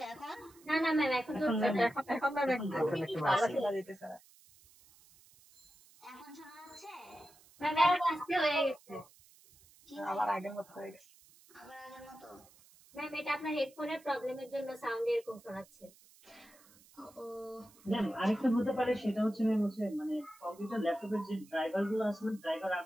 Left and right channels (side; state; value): right; noise; hiss, 26 dB below the sound